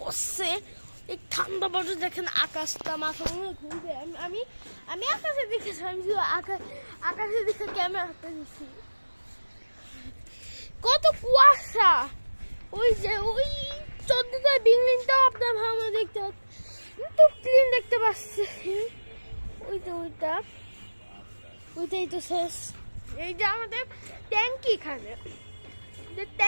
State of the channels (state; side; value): inverted; both; correlation -1.00